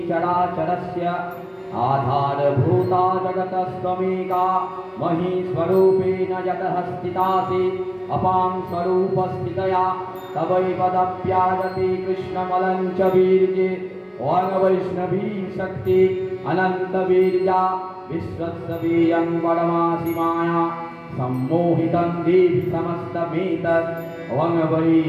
चराचरस्य आधारभूता जगतस्त्वमेका, महीस्वरूपेण यतः स्थितासि अपां स्वरूपस्थितया तवैपदप्याजते कृष्णमलं च वीर्ये। ओं वैष्णवी शक्ति अनन्तवीर्या विश्वस्वीयं परमासि माया सम्मोहितं देवि समस्तमेतत्। ओं वै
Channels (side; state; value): both; identical; correlation 1.00